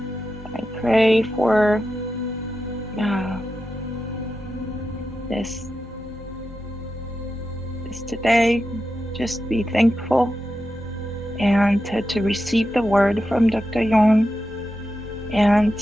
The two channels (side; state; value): both; normal; correlation 0.89